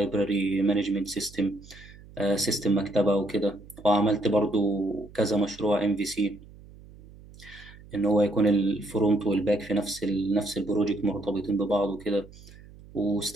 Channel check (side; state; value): right; noise; hum, 21 dB below the sound